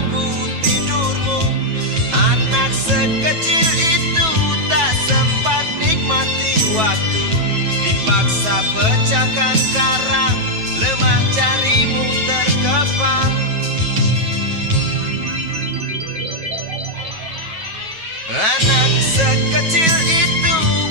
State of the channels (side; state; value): left; late; 9.2 ms